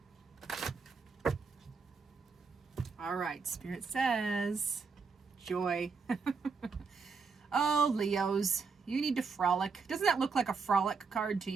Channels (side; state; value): left; quieter; 5.0 dB